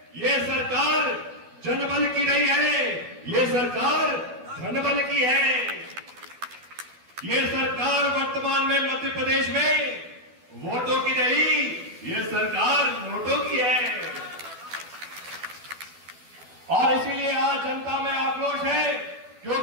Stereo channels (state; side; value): late; left; 12 ms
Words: ये सरकार जनबल की नहीं है, ये सरकार धनबल की है। ये सरकार वर्तमान में मध्य प्रदेश में वोटों की नहीं, ये सरकार नोटों की है। और इसीलिए आज जनता में आक्रोश है